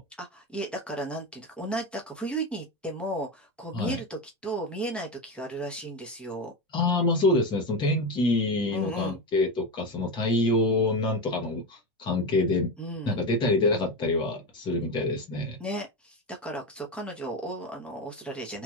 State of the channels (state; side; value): normal; both; correlation 0.18